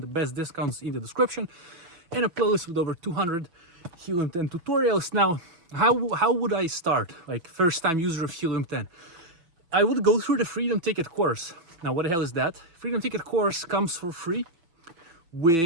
the best discounts in the description, and a playlist with over 200 Helium 10 tutorials. Now, how would I start? Like first time user of Helium 10. I would go through the Freedom Ticket course. Now, what the hell is that? Freedom Ticket course comes for free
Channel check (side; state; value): left; late; 6.0 ms